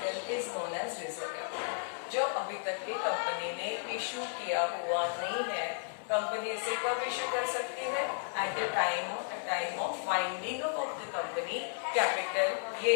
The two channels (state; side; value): silent; right; 55 dB below the other